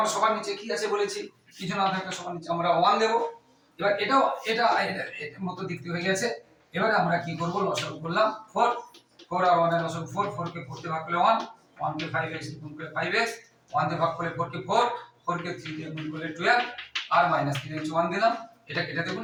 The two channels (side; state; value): both; identical; correlation 1.00